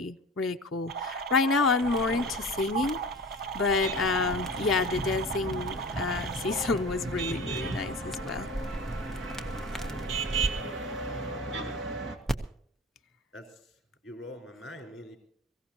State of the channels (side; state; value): both; normal; correlation 0.35